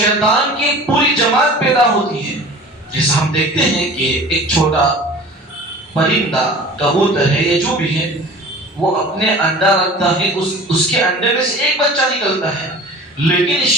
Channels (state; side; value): normal; both; correlation 0.41